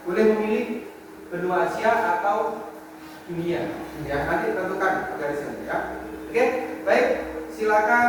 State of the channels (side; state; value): both; identical; correlation 1.00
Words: Boleh memilih benua Asia atau dunia. Ya, nanti tentukan garisnya ya. Oke, baik.